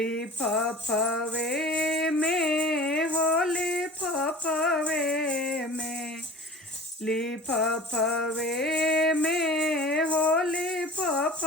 में हो लिफाफे में, लिफाफे में हो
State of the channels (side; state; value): both; normal; correlation 0.41